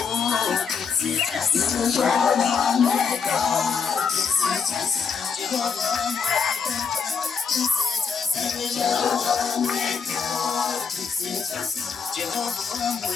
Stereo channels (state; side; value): quieter; right; 6.0 dB